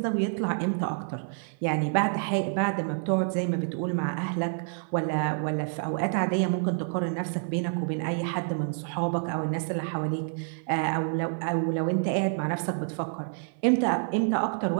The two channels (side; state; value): left; silent; 59 dB below the other